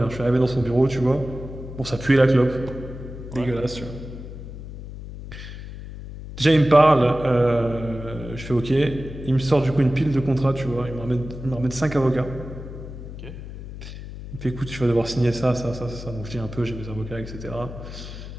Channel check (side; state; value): left; noise; hum, 11 dB below the sound